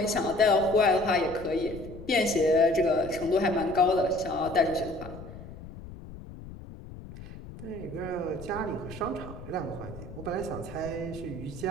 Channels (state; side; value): noise; left; rumble, 14 dB below the sound